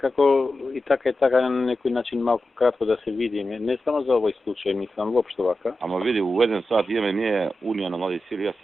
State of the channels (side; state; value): both; normal; correlation 0.91